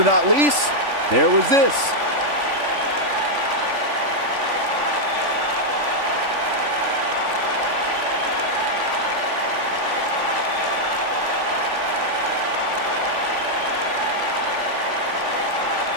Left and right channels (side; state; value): left; late; 3.5 ms